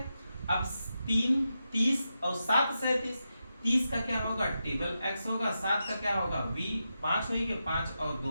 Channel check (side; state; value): both; inverted; correlation -0.88